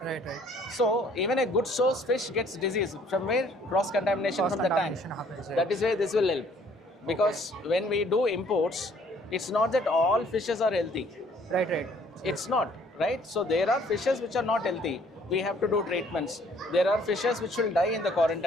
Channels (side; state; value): both; normal; correlation 0.60